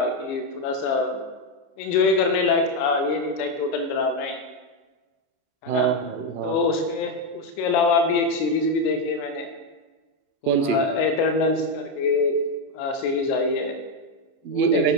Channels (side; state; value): right; late; 29 ms